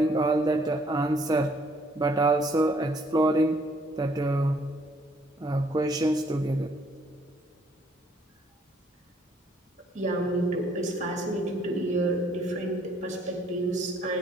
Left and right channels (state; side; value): normal; both; correlation 0.65